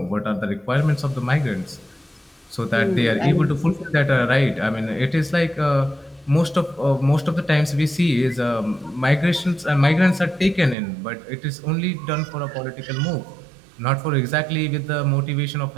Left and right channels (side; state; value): left; drops out; at 10.8 s